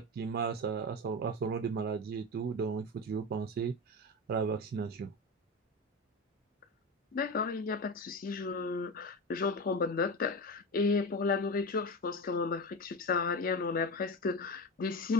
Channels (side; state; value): both; normal; correlation 0.21